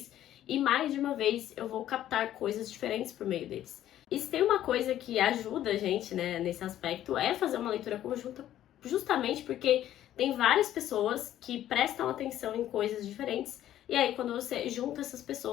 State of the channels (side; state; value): right; quieter; 12.3 dB